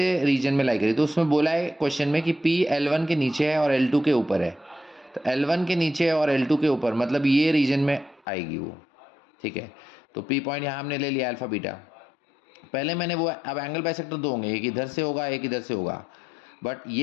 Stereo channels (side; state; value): right; drops out; at 8.2 s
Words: रीजन में लाई करेगी, तो उसमें बोला है क्वेश्चन में कि P L1 के नीचे है और L2 के ऊपर है। तो L1 के नीचे है और L2 के ऊपर, मतलब ये रीजन में आएगी वो। ठीक है, तो P पॉइंट यहाँ हमने ले लिया अल्फा बीटा। पहले मैंने वो, अब एंगल बाइसेक्टर दो होंगे, एक इधर से होगा एक इधर से होगा, बट